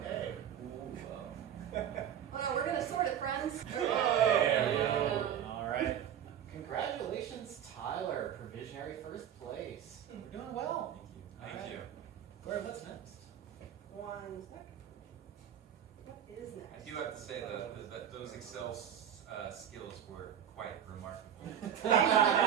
Oh no, we're gonna sort it, friends. There we go. All right. Congratulations, Tyler. Provisionary first place. We're doing well. Thank you. Corey, what's next? 1 second. What is I next? do have to say that those Excel skills were quite remarkable. I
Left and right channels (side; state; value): left; quieter; 9.6 dB